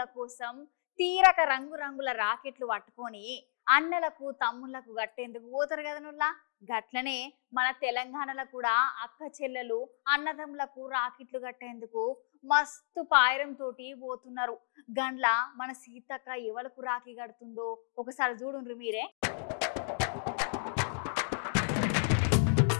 కోసం తీరక రంగురంగుల రాకెట్లు పట్టుకొని అన్నలకు తమ్ముళ్లకు గట్టేందుకు పోతారు కదా నుల్లా. గట్లనే మన తెలంగాణలో కూడా అక్క చెల్లెలు అన్నదమ్ములకు రాకెట్లు కట్టేందుకు మస్తు పాయరం తోటి పోతున్నారు. గండ్ల మన సీతక్క ఎవలకు రాఖీ కడుతుందో ఒకసారి చూడుండ్రు మీరే.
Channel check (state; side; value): silent; right; digital silence